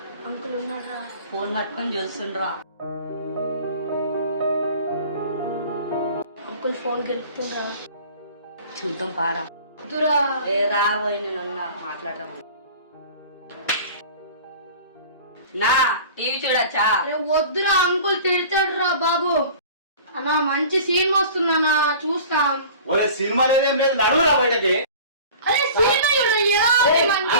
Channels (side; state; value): both; inverted; correlation -0.42